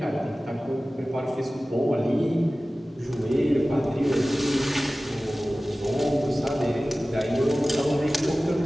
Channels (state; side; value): normal; both; correlation 0.97